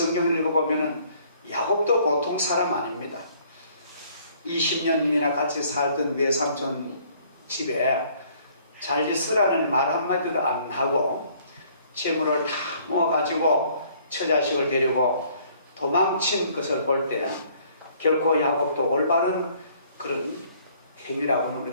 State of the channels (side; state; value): both; inverted; correlation -0.60